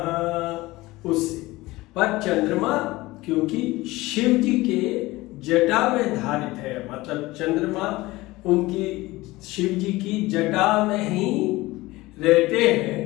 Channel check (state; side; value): quieter; right; 19.7 dB